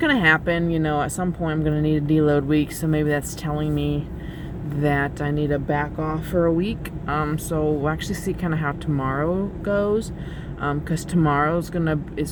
happen, you know. At some point, I'm gonna need a deload week, so maybe that's telling me that I need to back off for a week. So we'll actually see kind of how tomorrow goes. Because tomorrow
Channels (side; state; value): both; identical; correlation 1.00